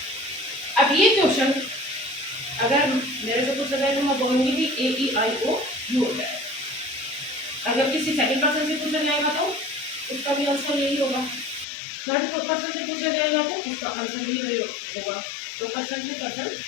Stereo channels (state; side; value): drops out; right; at 11.7 s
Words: अब ये क्वेश्चन अगर मेरे से पूछा जाए तो मैं बोलूंगी कि ए ई आई ओ यू होता है। अगर किसी सेकंड पर्सन से पूछा जाएगा तो उसका भी आंसर यही होगा, थर्ड पर्सन से पूछा जाएगा तो उसका आंसर भी यही होगा, तो पर्सन टू पर्सन